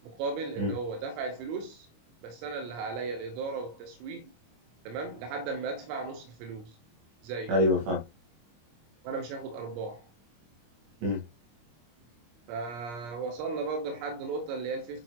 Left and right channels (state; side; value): late; left; 25 ms